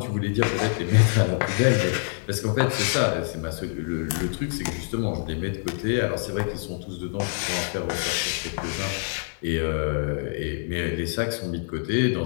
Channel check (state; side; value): silent; right; 61 dB below the other